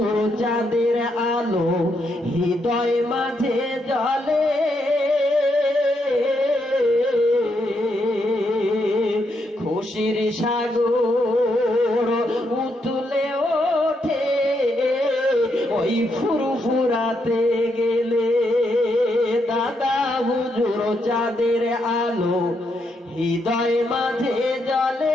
চাঁদের আলো, হৃদয় মাঝে জ্বলে, খুশির সাগর উতলে ওঠে ওই ফুরফুরাতে গেলে। দাদা হুজুর চাঁদের আলো, হৃদয় মাঝে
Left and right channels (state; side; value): normal; both; correlation 0.79